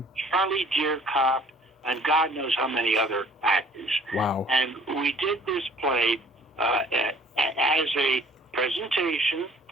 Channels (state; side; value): normal; both; correlation 0.53